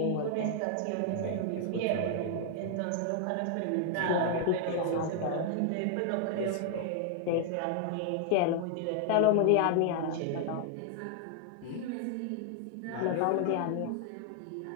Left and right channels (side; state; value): both; different; correlation 0.00